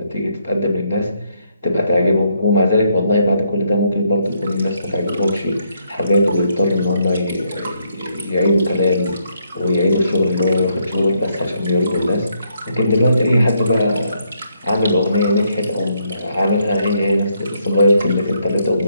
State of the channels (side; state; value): both; inverted; correlation -0.74